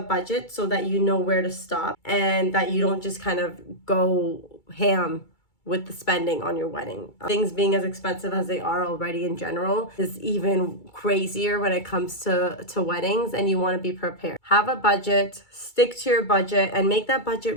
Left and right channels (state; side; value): late; right; 2.3 ms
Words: budget so that you know where to stop and that you don't just kind of go ham with the spending on your wedding. Things being as expensive as they are already in general is even crazier when it comes to weddings, and you want to be prepared. Have a budget, stick to your budget, and make that